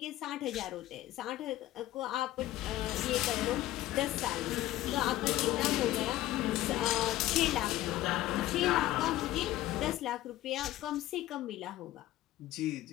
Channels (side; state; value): right; quieter; 15.1 dB